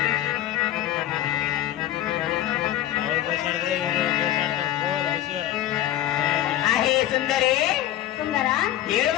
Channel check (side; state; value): right; quieter; 12.9 dB